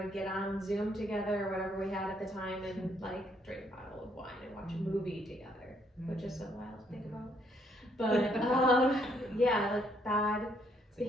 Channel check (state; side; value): normal; both; correlation 0.70